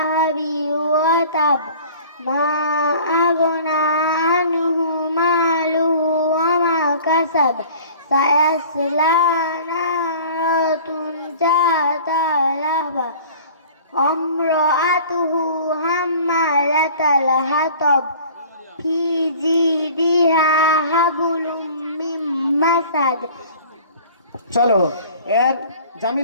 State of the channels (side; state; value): both; inverted; correlation -0.46